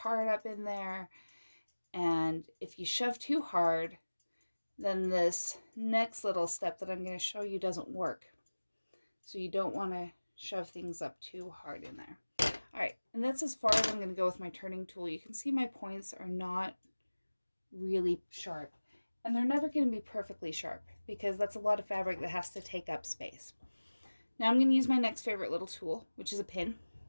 up in there. And if you shove too hard, then this next little step that I'm going to show you doesn't work. So you don't want to shove things up too hard in there. All right, and that's as far as I'm going to go with my turning tool. You can see my points are not really sharp, and they're never going to be perfectly sharp because that's a lot of fabric that has to take up space. Now I'm going to use my next favorite little tool, which is a pin.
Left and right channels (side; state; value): both; inverted; correlation -1.00